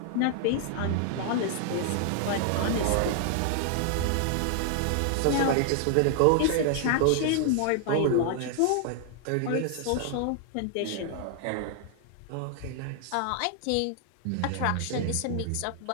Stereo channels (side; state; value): both; different; correlation 0.00